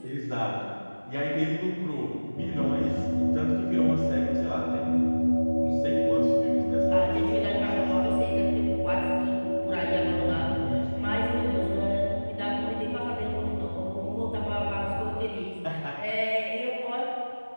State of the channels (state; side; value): inverted; both; correlation -1.00